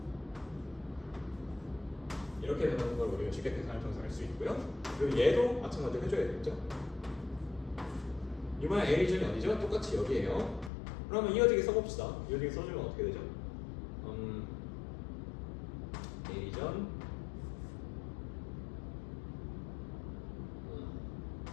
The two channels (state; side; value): drops out; right; at 10.7 s